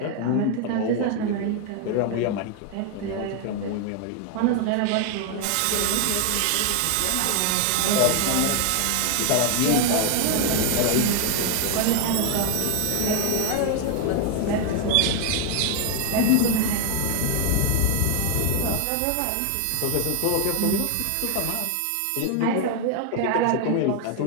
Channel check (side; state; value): both; different; correlation 0.00